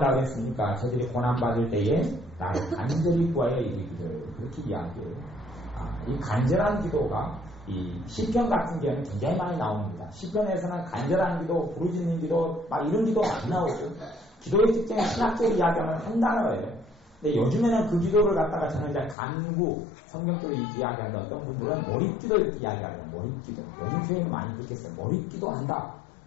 했습니까? 저들이 고난받을 때에 나를 간절히 구하여 이르기를 그렇게 이야기해요. 이 간절한 기도가 이 시편 같은 경우는 굉장히 많이 나옵니다. 시편에서는 간절한 기도, 부르짖는 기도 막 이런 기도 많이 나오고 기도의 특징은 신학적으로 이야기하면 한 단어예요. 근데 요즘에는 그 기도를 갖다가 저는 이제 간구, 성경적으로 이야기하는 어떤 분들은 몰입기도 이렇게 이야기하는 몰입기도. 요즘 교회는 많이 그렇겠어요. 몰입기도 한다.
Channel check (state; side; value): drops out; right; at 19.2 s